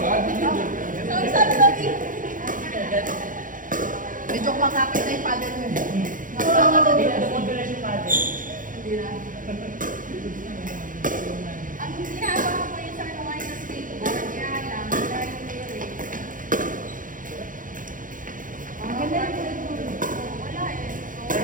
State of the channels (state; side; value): late; left; 0.39 ms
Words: Sorry. Medyo makakit na yung paddle mo. Nakasama na dito. Nakudulas yung paddle. Hindi na. Ang ginagawa ko yun sa ano ngayon sa skateboard, kaya lang, dahil theory. Ang ganda yung Wala eh.